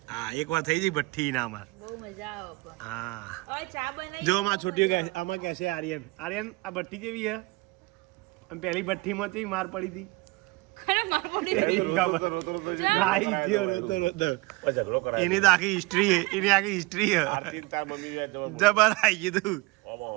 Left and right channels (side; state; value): left; quieter; 24.2 dB